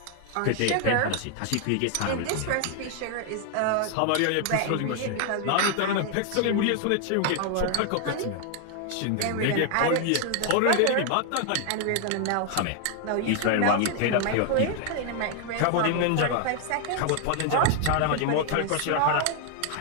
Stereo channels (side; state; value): both; different; correlation 0.00